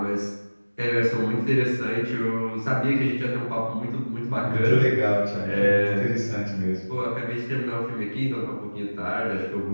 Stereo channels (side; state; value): both; inverted; correlation -1.00